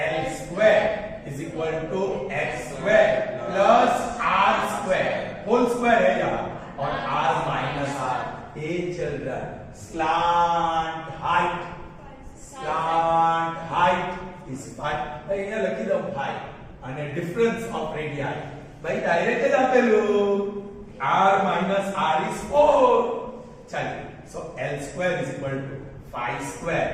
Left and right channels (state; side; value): identical; both; correlation 1.00